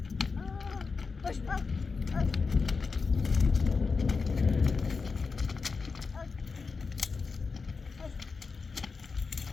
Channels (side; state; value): right; quieter; 4.7 dB